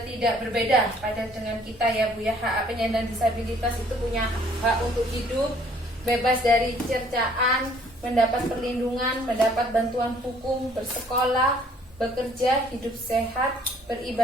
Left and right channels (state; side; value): normal; both; correlation 0.60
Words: tidak berbeda pada dengan kita ya Bu ya. Hak penyandang disabilitas itu punya hak untuk hidup bebas dari cercaan, mendapat perlindungan, mendapat bantuan hukum, bersekolah, bekerja, hidup sehat,